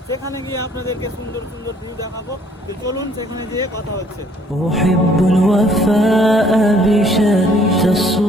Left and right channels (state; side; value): normal; both; correlation 0.61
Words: সেখানে গিয়ে আপনাদেরকে সুন্দর সুন্দর ভিউ দেখাবো। তো চলুন সেখানে গিয়ে কথা হচ্ছে।